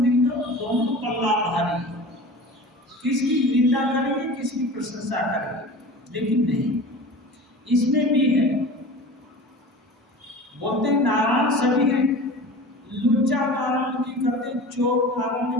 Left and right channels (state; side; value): normal; both; correlation 0.36